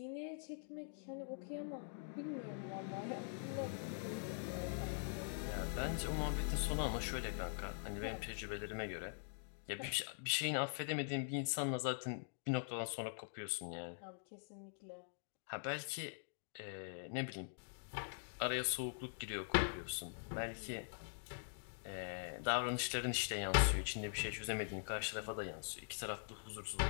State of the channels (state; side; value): silent; right; digital silence